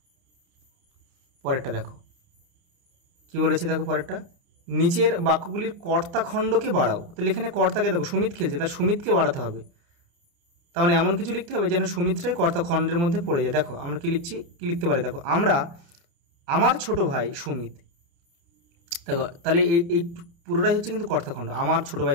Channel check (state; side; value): late; left; 29 ms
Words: পরেরটা দেখো কি বলেছে, দেখো পরেরটা, নিচের বাক্যগুলির কর্তা খণ্ডকে বাড়াও। তাহলে এখানে কর্তাকে দেখো, সুমিত খেলছে, তার সুমিতকে বাড়াতে হবে। তার মানে এমন কিছু লিখতে হবে যেন সুমিত্রাই কর্তা খণ্ডের মধ্যে পড়ে যায়। দেখো আমরা কি লিখছি, কি লিখতে পারি, দেখো আমার ছোট ভাই সুমিত। দেখো তাহলে এই পুরোটাই হচ্ছে কিন্তু কর্তাখণ্ড, আমার ছোট